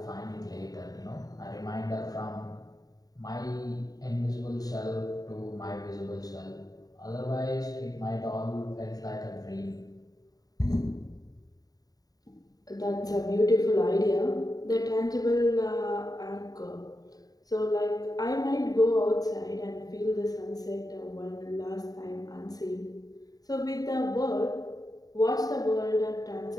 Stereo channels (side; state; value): right; late; 0.18 ms